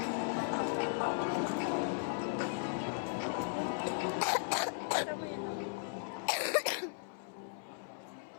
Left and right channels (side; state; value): right; silent; 53 dB below the other